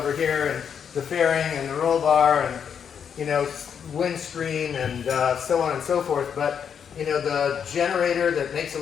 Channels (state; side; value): quieter; right; 7.6 dB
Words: here, and the fairing and the roll bar and, you know, windscreen and so on and so forth. But, you know, the generator that makes